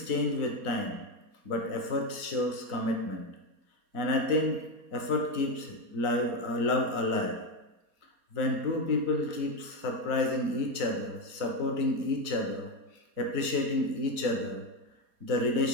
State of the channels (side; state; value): left; late; 4.2 ms